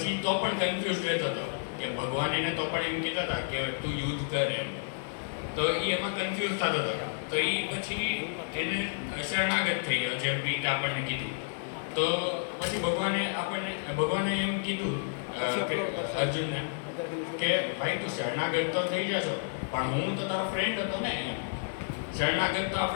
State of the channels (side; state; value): right; silent; 57 dB below the other